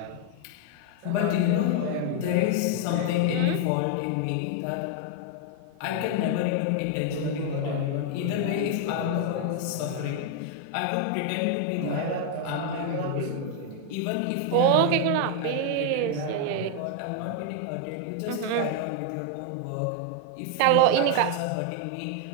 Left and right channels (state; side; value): different; both; correlation 0.00